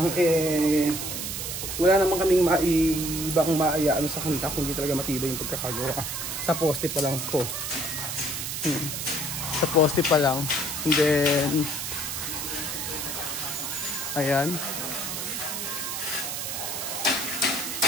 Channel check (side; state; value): right; noise; hiss, 4 dB below the sound